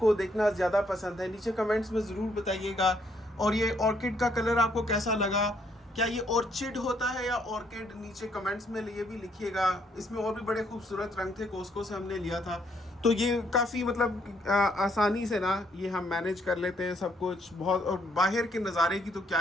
देखना ज़्यादा पसंद है। नीचे कमेंट्स में ज़रूर बताइएगा। और ये ऑर्किड का कलर आपको कैसा लगा, क्या ये ऑर्चिड होता है या ऑर्किड, नीचे कमेंट्स में ये भी लिखिएगा। इसमें और भी बड़े खूबसूरत रंग थे, कोस्को से हमने लिया था, तो ये काफ़ी मतलब आसानी से ना ये हम मैनेज कर लेते हैं सब कुछ बहुत। और बाहर के नज़ारे की तो क्या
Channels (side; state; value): both; normal; correlation 0.70